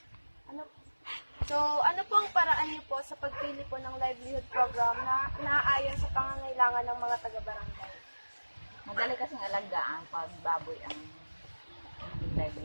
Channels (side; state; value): both; inverted; correlation -1.00